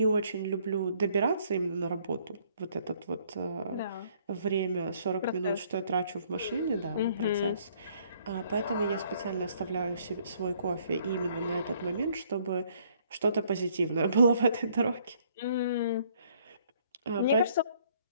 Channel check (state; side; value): inverted; both; correlation -0.64